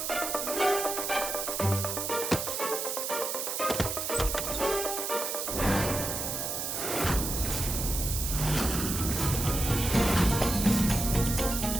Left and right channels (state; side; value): noise; right; hiss, 3 dB below the sound